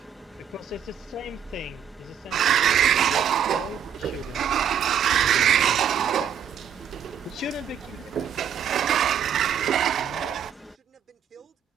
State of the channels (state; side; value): quieter; left; 8.4 dB